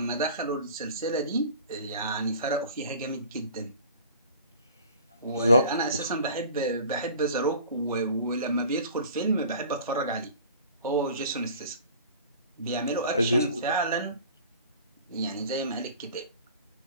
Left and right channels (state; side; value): inverted; both; correlation -0.44